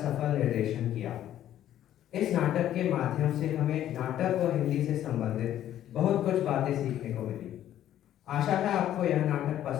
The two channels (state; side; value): quieter; right; 11.8 dB